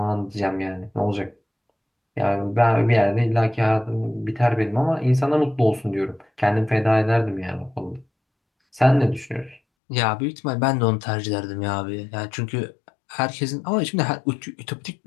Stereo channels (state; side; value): drops out; right; at 9.6 s